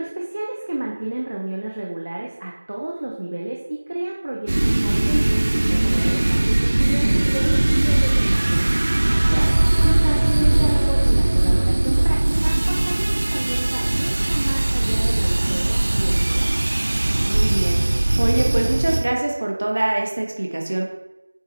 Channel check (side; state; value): both; inverted; correlation -1.00